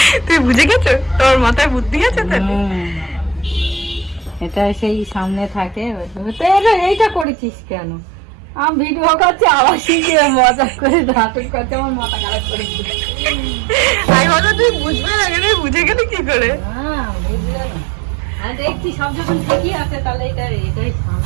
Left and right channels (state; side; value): drops out; left; at 7.2 s